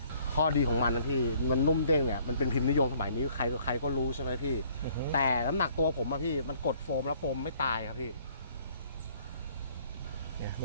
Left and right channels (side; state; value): both; inverted; correlation -0.60